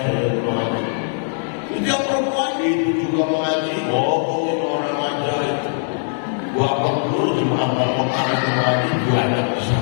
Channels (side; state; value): right; silent; 64 dB below the other